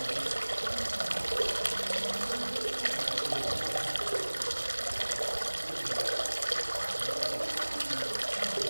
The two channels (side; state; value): both; inverted; correlation -1.00